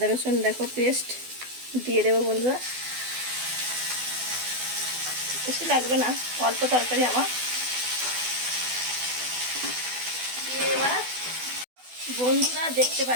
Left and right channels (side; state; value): left; late; 12 ms